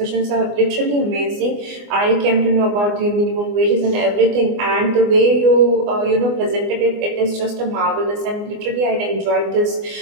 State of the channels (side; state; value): left; late; 24 ms